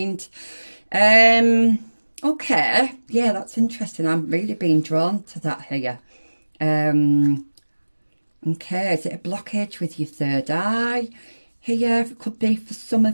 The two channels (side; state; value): both; inverted; correlation -1.00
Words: Okay, yeah, that's interesting. I'm really being drawn to that here. Okay, is it a blockage with your third eye here? It could be for some